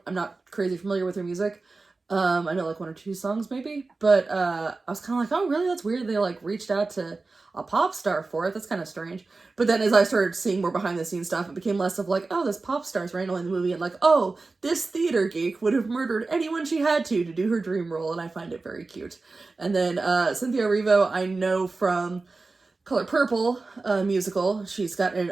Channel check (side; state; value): left; quieter; 3.7 dB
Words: I'm not crazy familiar with her music. I know like one or two songs maybe, but I was kind of like, oh really, that's weird. They like reached out to a pop star for it. That's kind of strange. But then as I started seeing more behind the scenes stuff, it became less of like, oh, this pop star's randomly in the movie, and like, oh, this theater geek would have murdered anyone she had to do her dream role, and I find it very cute. And then Cynthia Erivo, I know from Color Purple musical. She's got an